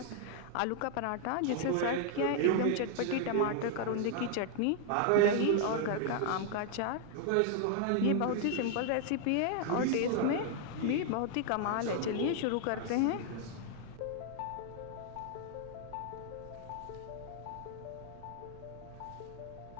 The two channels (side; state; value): both; different; correlation 0.00